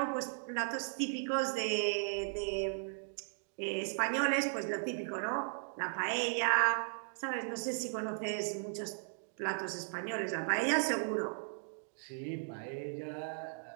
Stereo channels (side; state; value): left; silent; digital silence